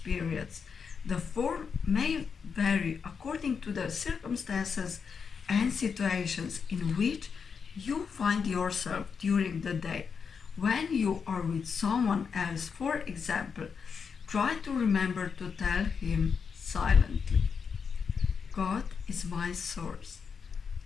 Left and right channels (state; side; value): quieter; right; 6.1 dB